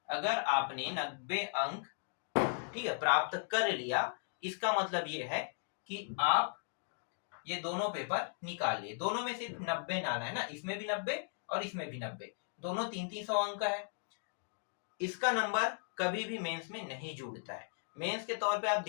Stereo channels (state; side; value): silent; right; digital silence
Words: अगर आपने 90 अंक ठीक है प्राप्त कर लिया, इसका मतलब ये है कि आप ये दोनों पेपर निकाल लिए। दोनों में सिर्फ 90 डालना है ना, इसमें भी 90 और इसमें भी 90, दोनों 300 अंक का है। इसका नंबर कभी भी मेंस में नहीं जुड़ता है। मेंस के तौर पे आप